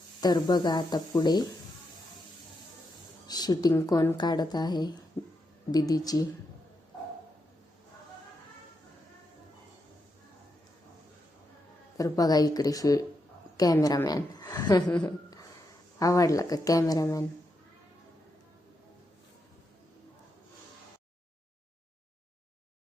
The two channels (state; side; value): normal; both; correlation 0.84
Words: तर बघा आता पुढे शूटिंग कोण काढत आहे दीदीची. तर बघा इकडे कॅमेरामॅन. आवडला का कॅमेरामॅन?